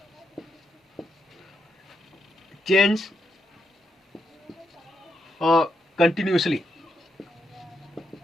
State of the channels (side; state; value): both; normal; correlation 0.81